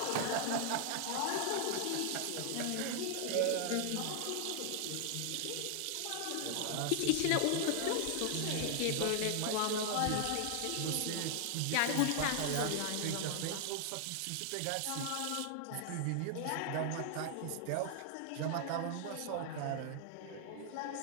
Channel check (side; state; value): both; different; correlation 0.00